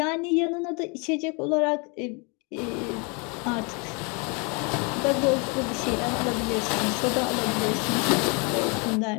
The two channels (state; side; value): quieter; right; 32.6 dB